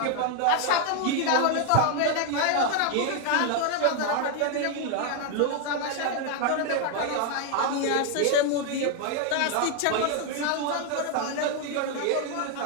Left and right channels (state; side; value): different; both; correlation 0.01